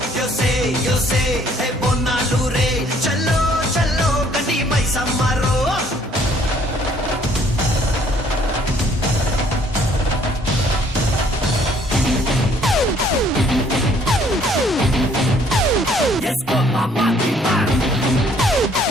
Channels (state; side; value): normal; both; correlation 0.61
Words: యోసే హే బొన్నాలు రే చల్లో చల్లో గని మైసమ్మారో. Yes, go mama, mama.